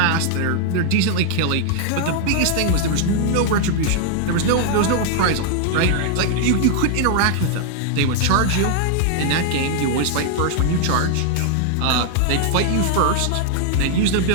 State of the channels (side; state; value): both; different; correlation 0.00